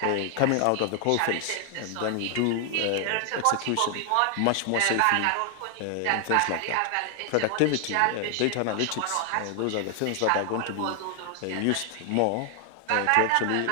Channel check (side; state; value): both; different; correlation 0.00